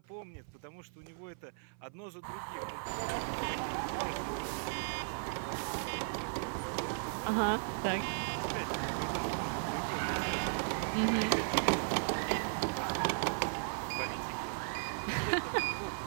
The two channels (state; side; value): silent; left; 54 dB below the other